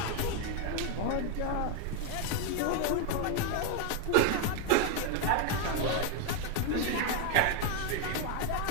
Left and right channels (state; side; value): different; both; correlation 0.01